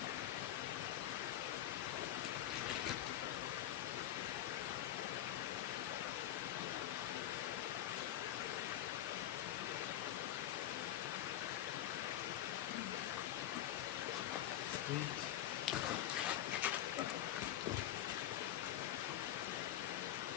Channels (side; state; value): right; quieter; 12.3 dB